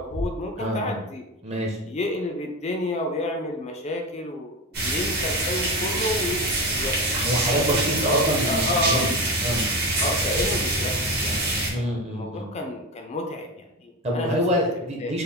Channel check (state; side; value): normal; both; correlation 0.21